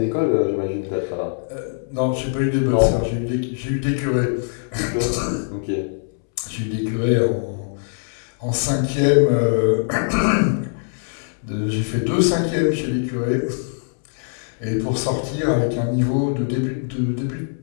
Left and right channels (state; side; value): silent; right; 64 dB below the other